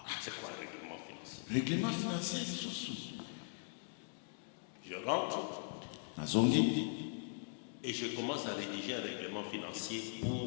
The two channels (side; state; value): right; silent; digital silence